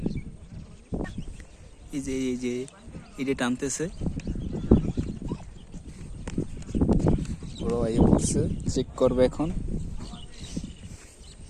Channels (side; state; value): both; identical; correlation 1.00